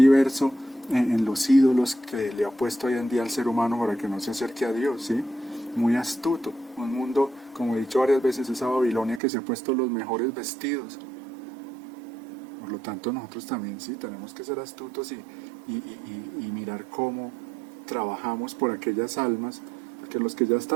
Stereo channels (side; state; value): left; drops out; at 9.2 s